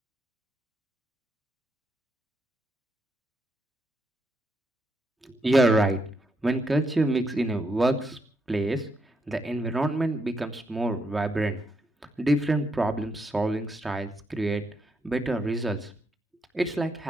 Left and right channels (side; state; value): both; normal; correlation 0.79